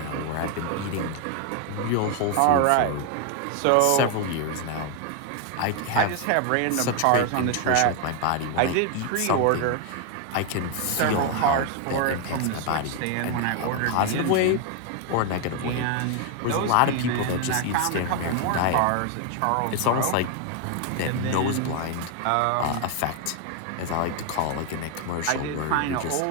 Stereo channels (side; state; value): both; different; correlation 0.01